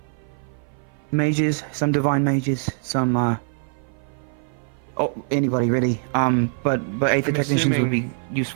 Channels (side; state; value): left; silent; 55 dB below the other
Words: Mages, some divine mages, some anybody really. But Aether I'm technicians would be assuming-